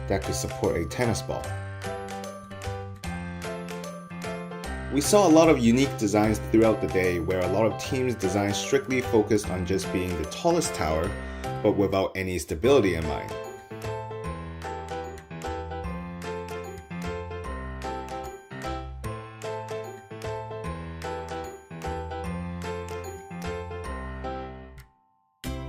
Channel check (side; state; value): both; identical; correlation 1.00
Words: that could support a tennis ball. We saw a lot of unique designs throughout the day where a lot of teams' designs strictly focused on just being the tallest tower, but without any stability in mind.